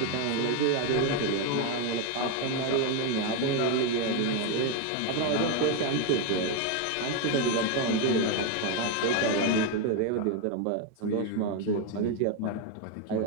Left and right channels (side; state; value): both; different; correlation 0.02